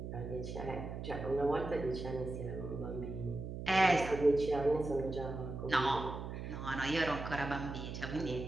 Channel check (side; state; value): right; noise; hum, 7 dB below the sound